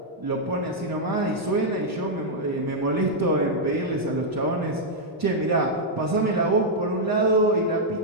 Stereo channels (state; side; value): normal; both; correlation -0.05